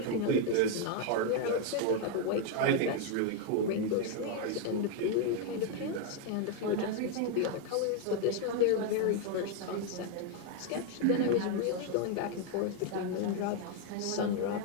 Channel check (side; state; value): both; different; correlation 0.01